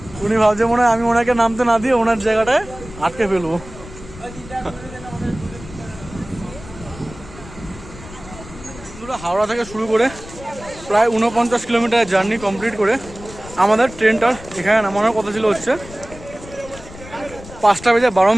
উনি ভাবছে মনে হয় আমি ওনাকে নামতে না দিয়ে ওনার জায়গাটায় আটকে ফেলবো। হাওড়া থেকে শুরু করে প্রায় 49 কিলোমিটার জার্নি কমপ্লিট করে আমাদের ট্রেনটার এখানে নামানোর কথা ছিল হচ্ছে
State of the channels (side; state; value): left; noise; rumble, 16 dB below the sound